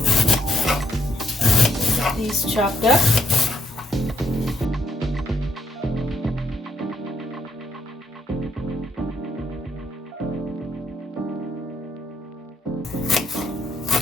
These chopped up.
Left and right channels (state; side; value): normal; both; correlation 0.73